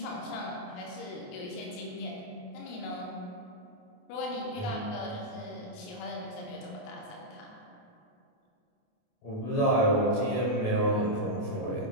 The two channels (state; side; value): late; right; 28 ms